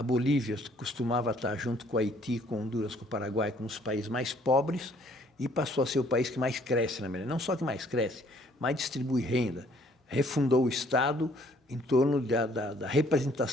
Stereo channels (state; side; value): normal; both; correlation 0.61